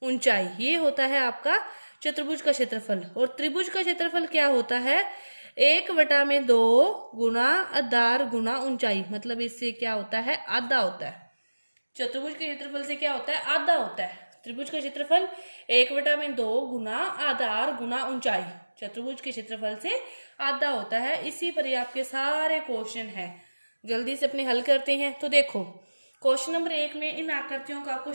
ऊंचाई। ये होता है आपका चतुर्भुज का क्षेत्रफल। और त्रिभुज का क्षेत्रफल क्या होता है? 1/2 गुना आधार गुना ऊंचाई, मतलब इससे क्या होता है? आधा होता है। चतुर्भुज के क्षेत्रफल से क्या होता है? आधा होता है। त्रिभुज का क्षेत्रफल 1/2 गुना आधार गुना ऊंचाई, चतुर्भुज के क्षेत्रफल से आधा होता है। इसी पर ही आपके सारे क्वेश्चन है। जल्दी से अपने हल करते हैं। तो देखो, क्वेश्चन नंबर 1 में इन आकृतियों का आपको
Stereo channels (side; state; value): both; inverted; correlation -1.00